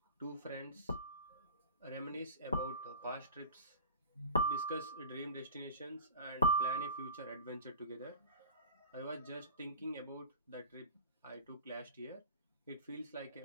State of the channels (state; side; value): inverted; both; correlation -0.34